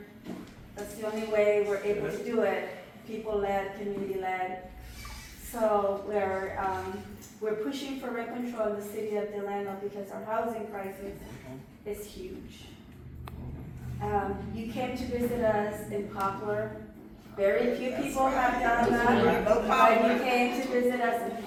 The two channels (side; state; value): both; identical; correlation 1.00